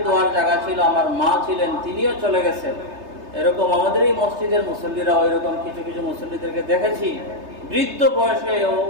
দোয়ার জায়গা ছিল, আমার মা ছিলেন, তিনিও চলে গেছেন। এরকম আমাদের এই মসজিদের মুসল্লিরাও এরকম কিছু কিছু মুসল্লিদেরকে দেখেছি, বৃদ্ধ বয়সে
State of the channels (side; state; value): left; late; 3.3 ms